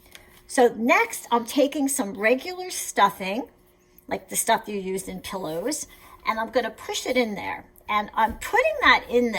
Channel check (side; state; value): both; identical; correlation 1.00